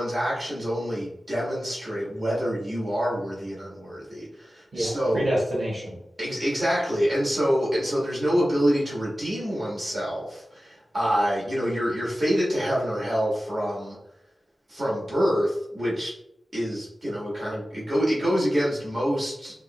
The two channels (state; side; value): normal; both; correlation 0.95